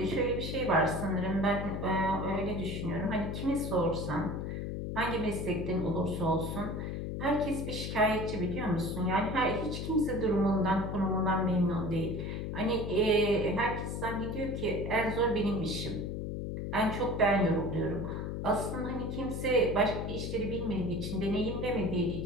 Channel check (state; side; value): noise; left; hum, 4 dB below the sound